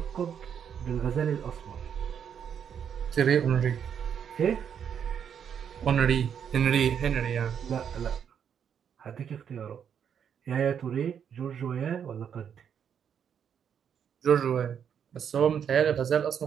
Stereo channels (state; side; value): quieter; left; 8.1 dB